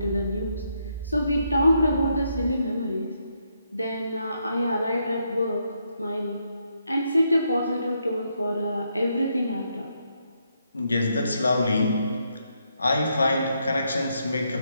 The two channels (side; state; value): both; inverted; correlation -0.78